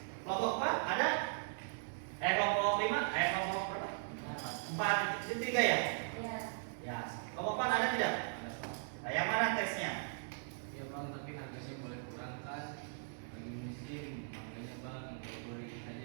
Kelompok 4 ada? Kelompok 5? Kelompok berapa? 4, itu 3 ya? Iya. Ya. Kelompok 4 ada tidak? Nah, yang mana teksnya? Ya Bang, tapi harganya boleh kurang kan? Lagi musim, makanya Bang boleh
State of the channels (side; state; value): left; silent; digital silence